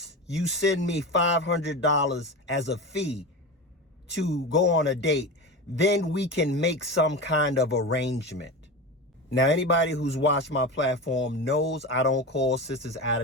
you send me $500 as a fee to go on a date, then we can make some kind of arrangement. Now, anybody who's watched my platform knows I don't call sisters out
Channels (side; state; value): both; normal; correlation 0.25